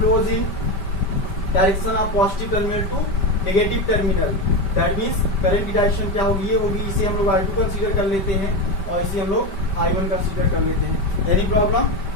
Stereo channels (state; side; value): late; right; 5.1 ms